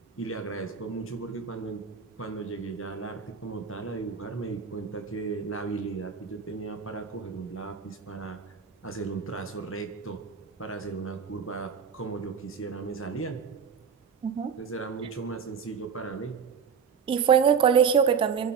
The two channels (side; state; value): left; quieter; 6.5 dB